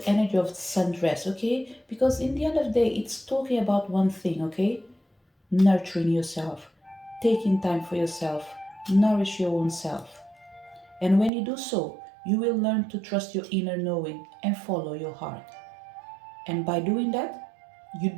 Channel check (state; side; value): drops out; left; at 11.3 s